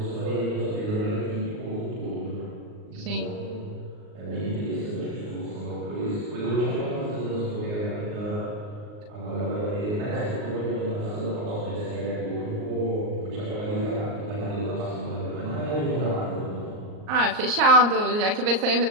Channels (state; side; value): late; left; 38 ms